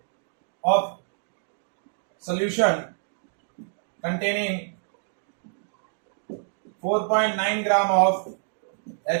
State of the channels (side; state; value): left; silent; 60 dB below the other